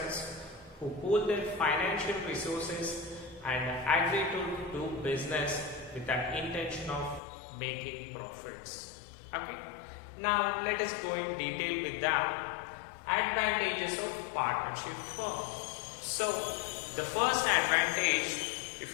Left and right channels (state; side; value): drops out; right; at 7.2 s